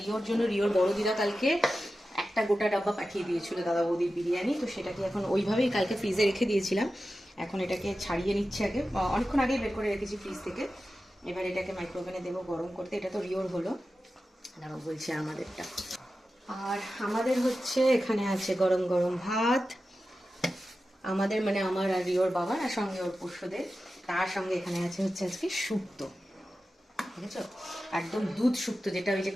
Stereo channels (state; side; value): normal; both; correlation 0.93